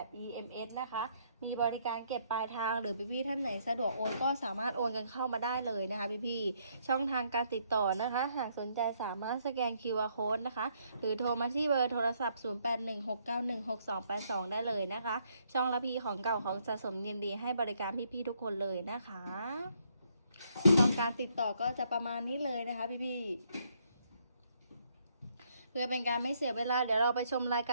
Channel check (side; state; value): both; inverted; correlation -0.71